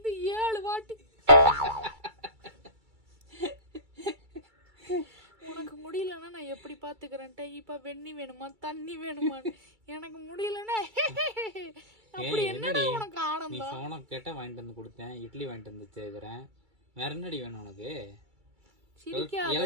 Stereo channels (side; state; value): left; late; 2.3 ms